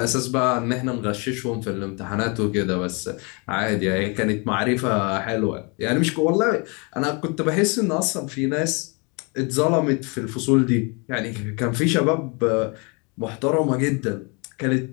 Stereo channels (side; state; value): right; quieter; 31.9 dB